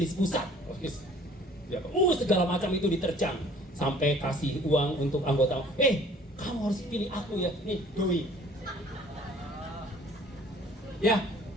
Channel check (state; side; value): normal; both; correlation 0.53